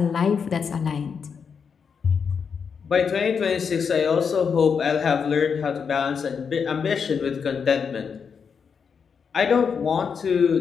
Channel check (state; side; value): quieter; right; 6.3 dB